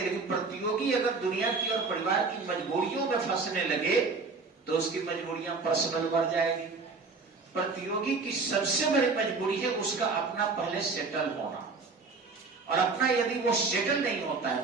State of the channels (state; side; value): quieter; left; 4.2 dB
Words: प्रतियोगी अगर दुनिया की और परिवार की मजबूरियों में फंसने लगे तो उसकी मजबूरियां पर्सनल बढ़ जाएगी। प्रतियोगी की सबसे बड़ी मजबूरी है उसका अपना पहले सेटल होना, और अपना यदि वो सेटल नहीं होता